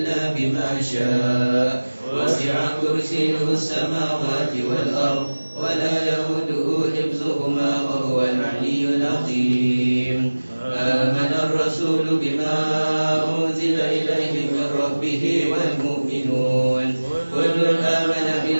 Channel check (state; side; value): inverted; both; correlation -1.00